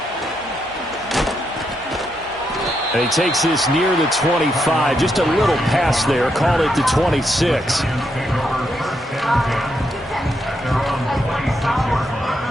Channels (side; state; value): both; normal; correlation 0.80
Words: And he takes this near the 25. Just a little pass there. Call it the 26.